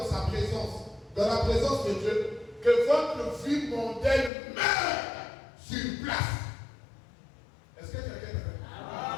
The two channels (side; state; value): right; drops out; at 4.3 s